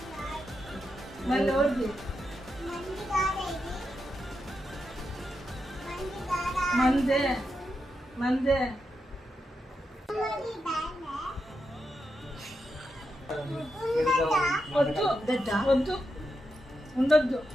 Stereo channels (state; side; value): normal; both; correlation 0.85